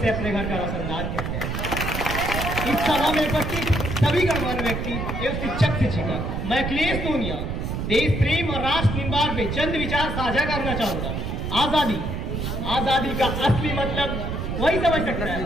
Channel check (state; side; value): noise; right; rumble, 3 dB below the sound